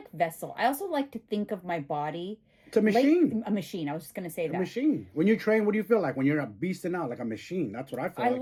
vessel. I also like to think of my body. It's a machine. A machine. I was just going to say that. A machine. When you train, what do you feel like? When you're beasting out like a machine. That's what I feel like. I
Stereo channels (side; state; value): both; identical; correlation 1.00